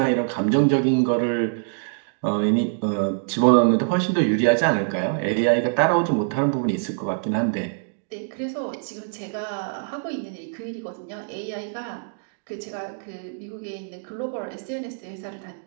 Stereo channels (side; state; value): left; silent; digital silence